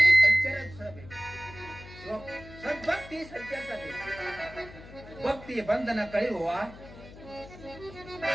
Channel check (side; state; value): left; noise; hum, 17 dB below the sound